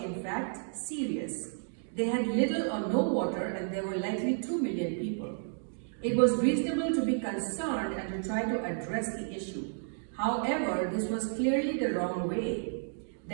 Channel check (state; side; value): silent; left; digital silence